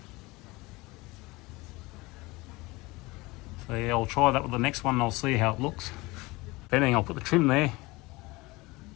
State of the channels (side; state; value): right; quieter; 22.6 dB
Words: So yeah, I'll try that with the next one and I'll see how it looks. If anything, I'll put the trim there